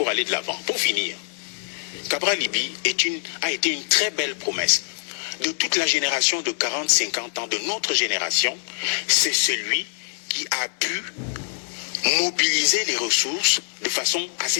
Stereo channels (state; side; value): silent; right; 63 dB below the other